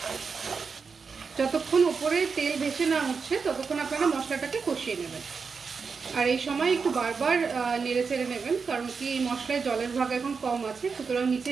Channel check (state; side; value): quieter; left; 5.3 dB